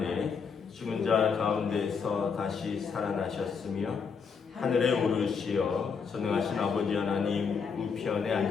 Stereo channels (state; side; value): quieter; right; 5.9 dB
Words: 죽은 자 가운데서 다시 살아나셨으며 하늘에 오르시어 전능하신 아버지 하나님 우편에